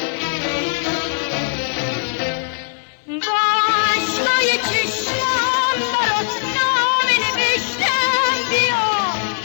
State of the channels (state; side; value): silent; right; digital silence